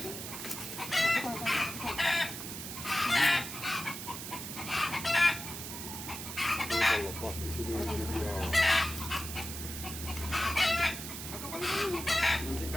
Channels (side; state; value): right; noise; hiss, 8 dB below the sound